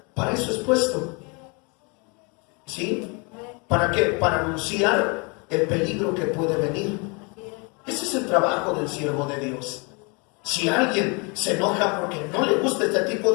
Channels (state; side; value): quieter; right; 31.6 dB